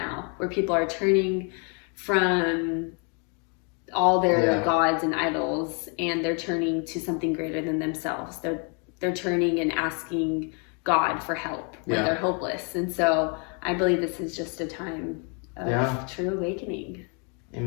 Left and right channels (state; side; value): quieter; right; 37.4 dB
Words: where people are turning from all their gods and idols, and they're turning to something greater than themselves. They're turning and asking God for help when they're hopeless. And so I believe this is just a time of true awakening.